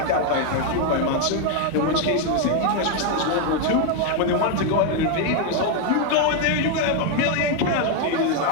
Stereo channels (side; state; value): both; different; correlation 0.01